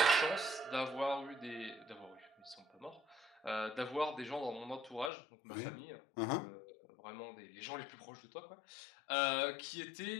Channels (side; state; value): right; drops out; at 5.1 s